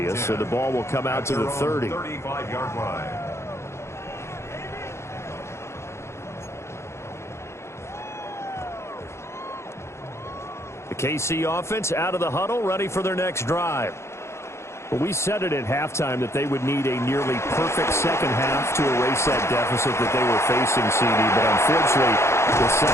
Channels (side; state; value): right; late; 0.13 ms